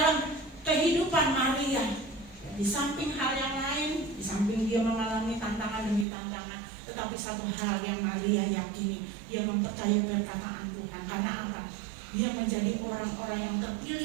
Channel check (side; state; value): left; drops out; at 6.1 s